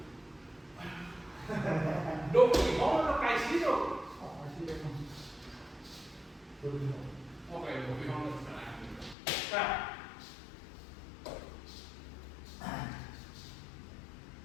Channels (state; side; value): drops out; right; at 9.2 s